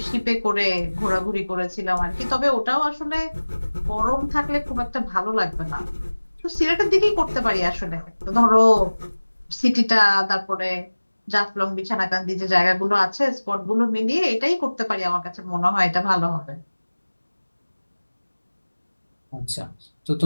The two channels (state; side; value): inverted; both; correlation -1.00